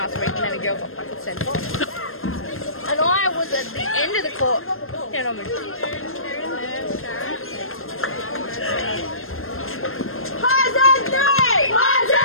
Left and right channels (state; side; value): late; right; 0.61 ms